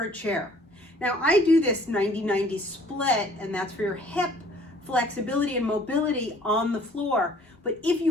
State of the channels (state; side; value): normal; both; correlation 0.56